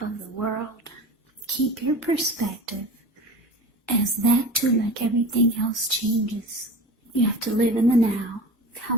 of the world, keep your perspective, as that too, like everything else, changes. You have to live in the now,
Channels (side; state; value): both; normal; correlation 0.34